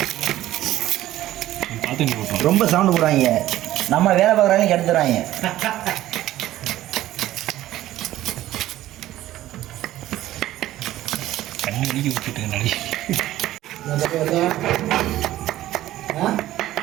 ரொம்ப சவுண்டு போடுறாங்க, நம்ம வேலை பார்க்குறாங்க கெடுத்துறாங்க. தண்ணி ஒழுகி விட்டுட்டு நடி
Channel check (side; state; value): left; quieter; 14.5 dB